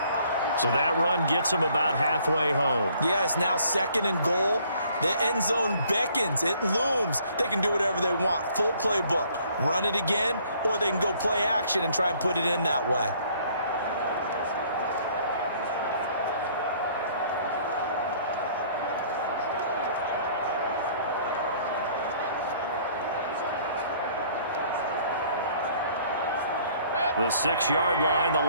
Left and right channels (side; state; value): both; inverted; correlation -0.60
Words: So that run gets him about halfway home. Yeah, it's now 2nd and goal. The end zone beckons. It looms. They can do whatever they want. Full playbook. Run it again, or they can go play action and try and put it in that way. The 6-yard line, the